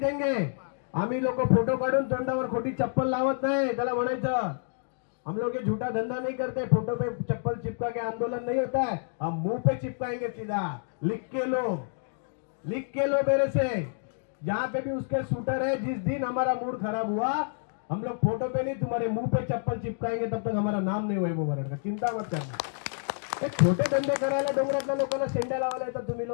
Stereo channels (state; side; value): silent; right; digital silence